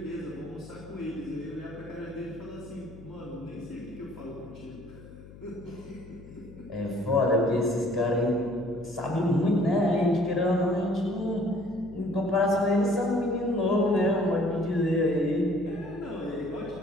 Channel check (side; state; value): left; noise; hum, 18 dB below the sound